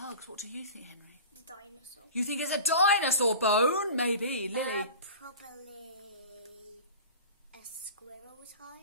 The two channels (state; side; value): inverted; both; correlation -0.36